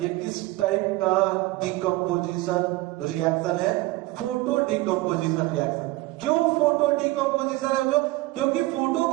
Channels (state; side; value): quieter; left; 19.9 dB